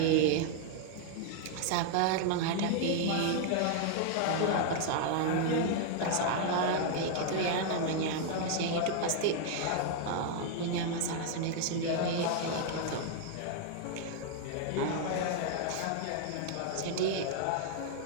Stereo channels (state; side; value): different; both; correlation 0.00